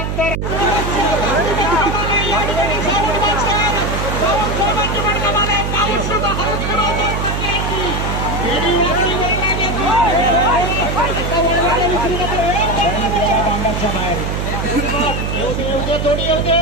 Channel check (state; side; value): noise; right; hum, 2 dB below the sound